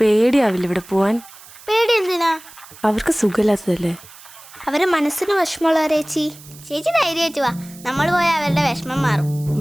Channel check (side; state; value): right; noise; hiss, 20 dB below the sound